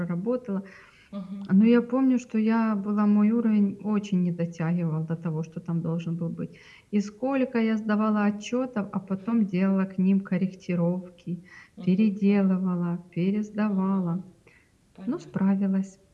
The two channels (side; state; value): both; identical; correlation 1.00